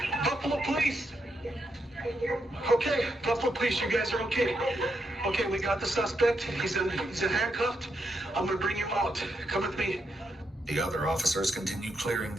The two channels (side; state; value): both; normal; correlation 0.81